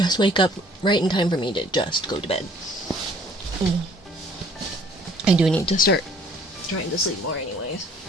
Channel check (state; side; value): normal; both; correlation 0.57